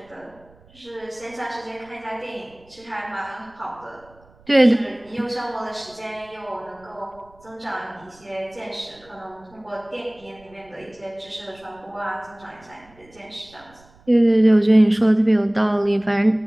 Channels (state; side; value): noise; right; rumble, 28 dB below the sound